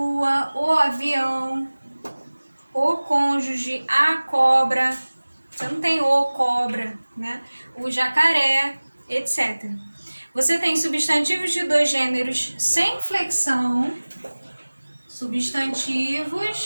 o avião, o cônjuge, a cobra. Você não tem o cobra, né? O jacaré, etc. Você tem substantivos de dois gêneros sem flexão,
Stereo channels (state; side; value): inverted; both; correlation -1.00